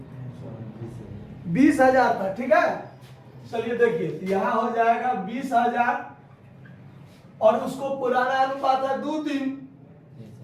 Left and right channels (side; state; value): both; identical; correlation 1.00